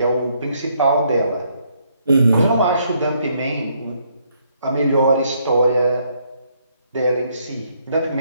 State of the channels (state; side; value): inverted; both; correlation -0.71